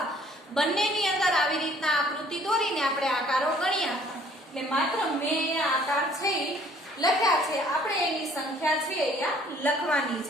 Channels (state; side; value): normal; both; correlation 0.58